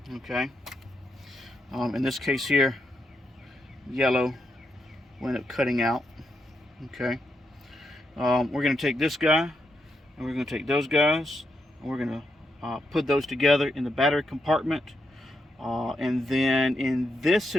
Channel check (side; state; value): both; normal; correlation 0.82